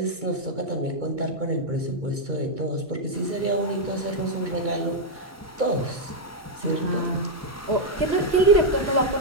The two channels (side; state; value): both; normal; correlation -0.01